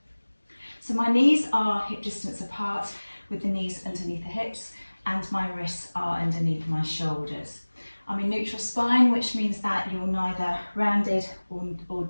So my knees are hip distance apart, with the knees underneath the hips, and my wrists are underneath my shoulders. I'm in neutral spine, which means that you're neither rounded or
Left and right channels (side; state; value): both; inverted; correlation -1.00